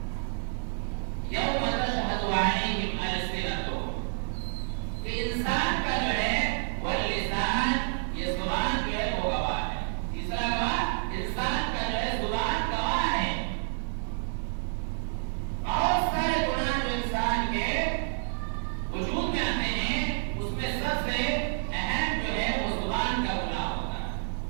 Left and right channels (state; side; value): silent; left; digital silence